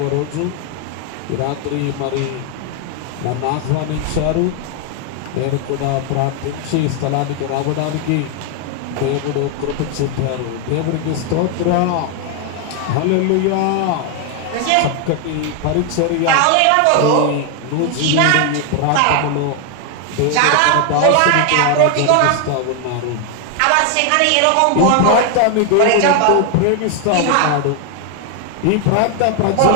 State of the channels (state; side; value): different; both; correlation 0.00